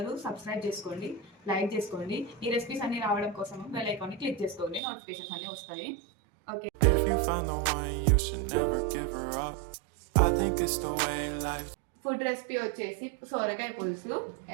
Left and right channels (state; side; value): drops out; left; at 4.8 s